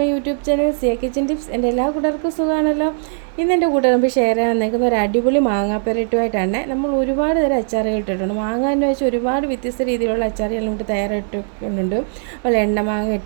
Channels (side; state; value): left; silent; digital silence